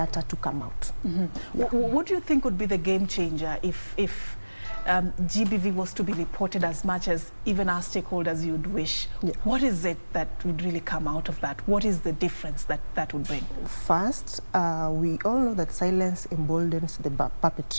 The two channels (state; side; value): inverted; both; correlation -1.00